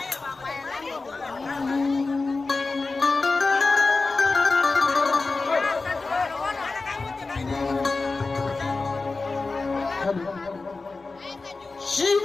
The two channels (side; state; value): right; quieter; 3.8 dB